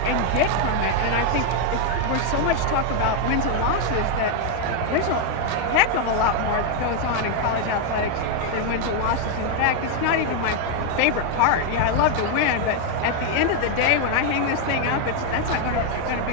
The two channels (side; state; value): both; different; correlation 0.00